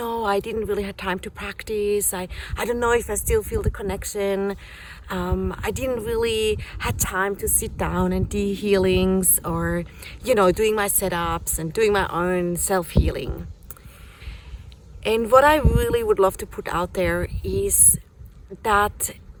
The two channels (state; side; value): identical; both; correlation 1.00